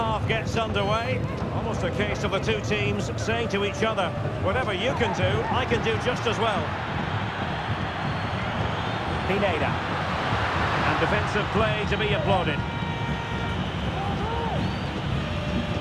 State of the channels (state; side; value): identical; both; correlation 1.00